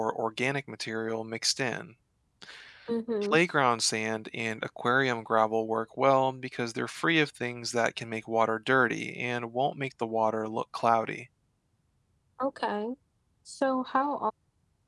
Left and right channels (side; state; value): both; identical; correlation 1.00